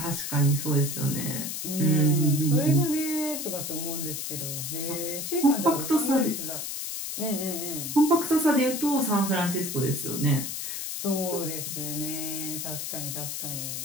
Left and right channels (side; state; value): left; noise; hiss, 5 dB below the sound